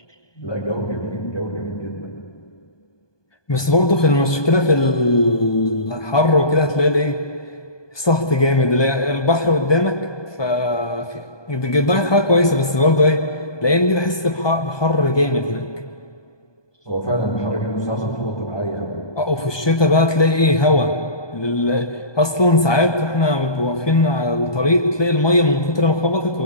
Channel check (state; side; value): late; right; 1.2 ms